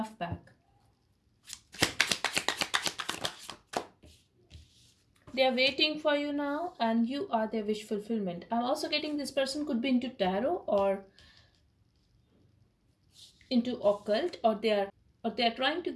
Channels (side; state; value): both; identical; correlation 1.00